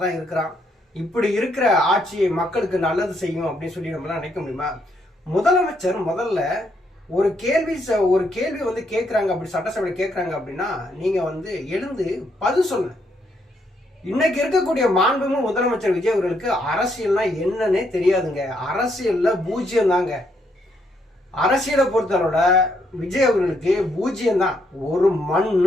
தான் இருக்கிறான். இப்படி இருக்கிற ஆட்சியை மக்களுக்கு நல்லது செய்யும் அப்படின்னு சொல்லி நம்மளாம் நினைக்க முடியுமா? முதலமைச்சர் முதல்ல ஒரு கேள்வி வந்து கேட்குறாங்க, அப்படி சட்டசபையில் கேட்குறாங்க அப்படின்னா நீங்க வந்து எழுந்து பதில் சொல்லுங்க. இன்னைக்கு இருக்கக்கூடிய மாண்புமிகு முதலமைச்சர் விஜய் அவர்களுக்கு அரசியல்னா என்னன்னே தெரியாதுங்க. அரசியல்ல பூஜ்யம் தாங்க. அரசியலை பொறுத்தவரோட விஜய் அவர்களுக்கு பூஜ்யம் தான், ஒரு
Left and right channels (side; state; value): both; normal; correlation 0.75